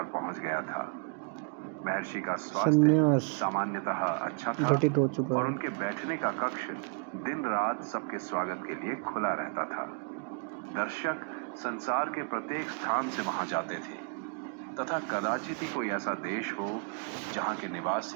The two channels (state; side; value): quieter; left; 37.2 dB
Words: पहुंच गया था। महर्षि का स्वास्थ्य सामान्यतः अच्छा था और उनके बैठने का कक्ष दिन रात सबके स्वागत के लिए खुला रहता था। दर्शक संसार के प्रत्येक स्थान से वहां जाते थे तथा कदाचित ही कोई ऐसा देश हो जहां के